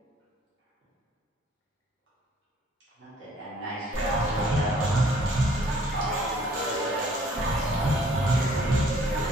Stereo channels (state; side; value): normal; both; correlation 0.59